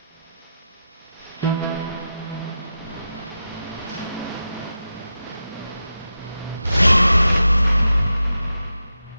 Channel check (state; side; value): inverted; both; correlation -0.89